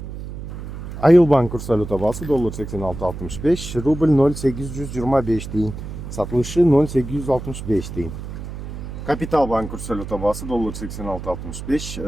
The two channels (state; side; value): noise; right; hum, 9 dB below the sound